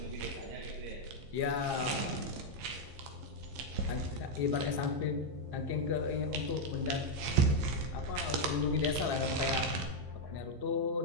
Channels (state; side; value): late; left; 15 ms